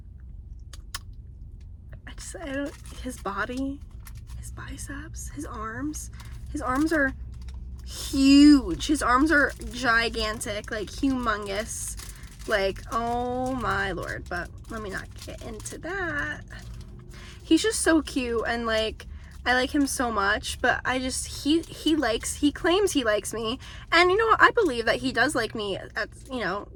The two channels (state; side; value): identical; both; correlation 1.00